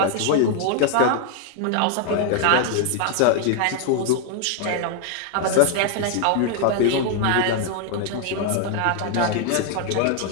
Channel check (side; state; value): both; different; correlation 0.00